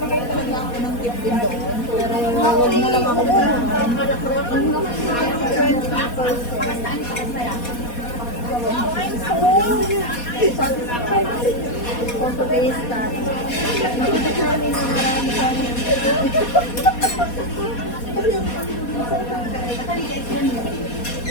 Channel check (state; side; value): late; right; 4.2 ms